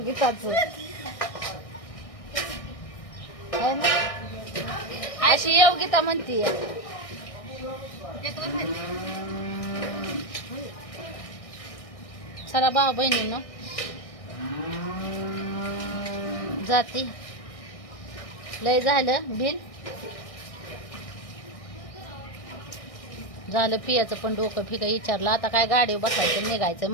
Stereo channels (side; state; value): right; late; 1.6 ms